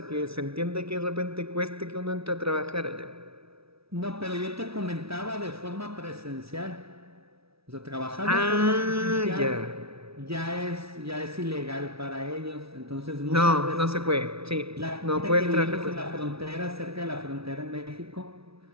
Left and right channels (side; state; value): left; late; 0.77 ms